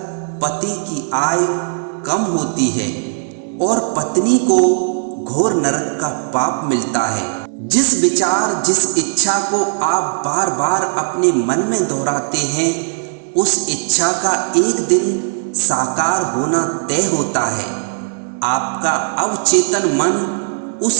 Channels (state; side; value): silent; left; digital silence